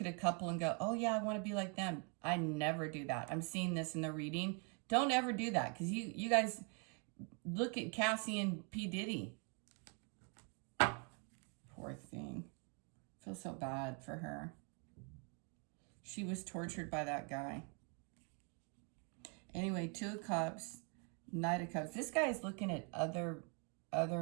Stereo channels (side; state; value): left; quieter; 37.1 dB